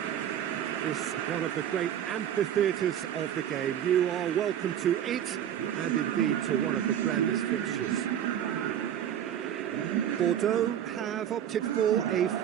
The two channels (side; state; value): left; quieter; 10.0 dB